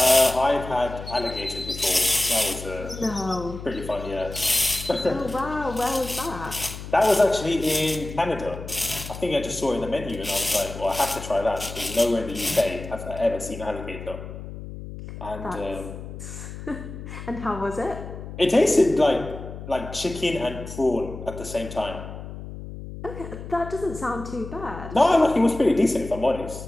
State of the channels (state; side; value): noise; left; hum, 11 dB below the sound